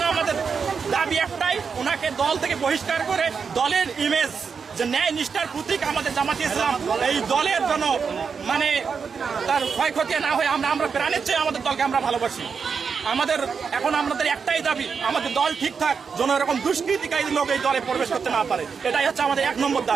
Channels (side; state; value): left; quieter; 5.9 dB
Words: আমাদের দাবি একটাই, ওনাকে দল থেকে বহিষ্কার করে দলের ইমেজ যে ন্যায় নিষ্ঠার প্রতীক আমাদের জামাতে ইসলাম, এই দলের জন্য তার ক্ষয়ক্ষতি না হয় আমরা প্রাণের চেয়ে আমাদের দলকে আমরা ভালোবাসি। আমাদের একটাই দাবি, আমাদের দল ঠিকঠাক যেন এরকম দুষ্কৃতিকারী লোক এই দলে প্রবেশ করতে না পারে, এটাই হচ্ছে আমাদের 1 নম্বর